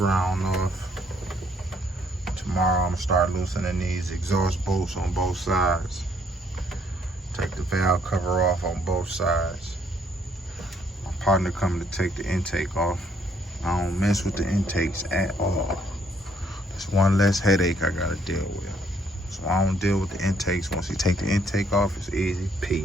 off. Tomorrow I'm gonna start loosening these exhaust bolts on both sides. Take the valve cover off on both sides. My partner coming to take the intake off. I don't mess with the intakes at all. It's one less headache I gotta deal with. So I don't deal with the intakes. Once you take the intake off, it's easy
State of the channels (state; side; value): normal; both; correlation 0.67